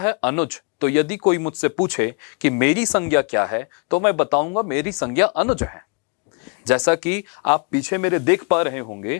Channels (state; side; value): quieter; right; 35.1 dB